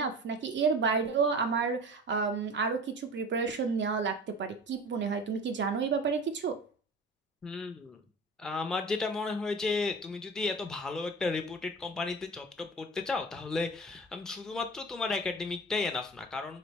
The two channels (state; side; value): normal; both; correlation 0.37